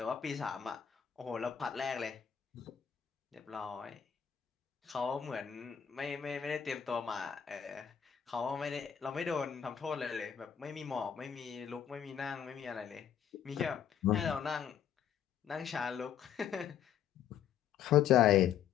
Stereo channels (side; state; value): right; quieter; 8.8 dB